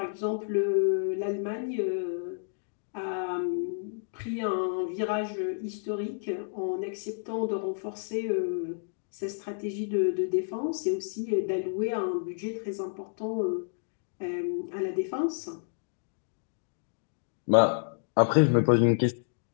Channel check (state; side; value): silent; right; digital silence